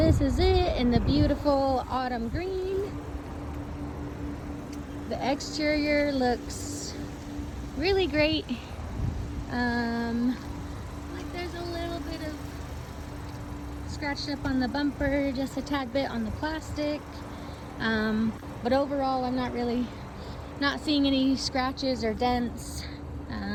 is it in the beautiful autumn green. The exterior looks really great. Like there's a little bit of scratched up on the bumper, just a tad bit on the plastic. But overall, I'm not seeing any scratches or dents.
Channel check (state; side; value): identical; both; correlation 1.00